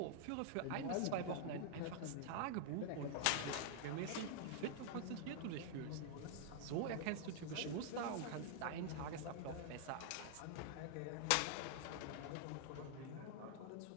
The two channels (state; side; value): different; both; correlation -0.01